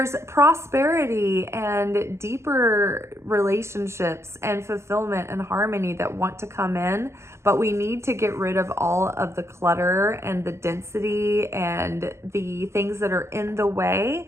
prosperity and deeper relationships and fulfillment and harmony that want to come in, but we need to get rid of all of the clutter and the density and the things that are in the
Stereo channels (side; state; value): left; late; 0.13 ms